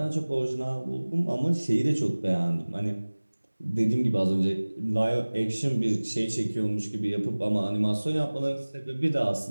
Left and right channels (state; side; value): inverted; both; correlation -1.00